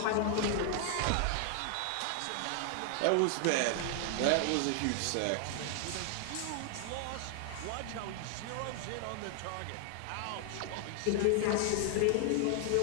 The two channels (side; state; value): both; different; correlation 0.00